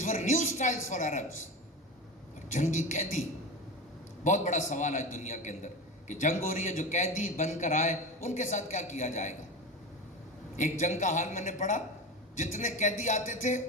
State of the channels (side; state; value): both; normal; correlation 0.26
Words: were new styles for Arabs. اور جنگی قیدی, بہت بڑا سوال ہے دنیا کے اندر کہ جنگ ہو رہی ہے, جو قیدی بن کر آئے ان کے ساتھ کیا کیا جائے گا. ایک جنگ کا حال میں نے پڑھا, جتنے قیدی آتے تھے